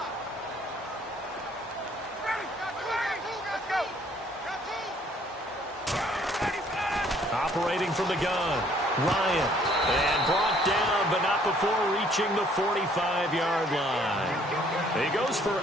Operating from the gun, Ryan. And brought down, but not before reaching the 45-yard line. He goes for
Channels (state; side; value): normal; both; correlation 0.61